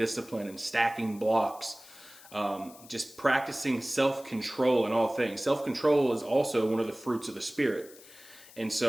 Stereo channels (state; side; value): noise; left; hiss, 21 dB below the sound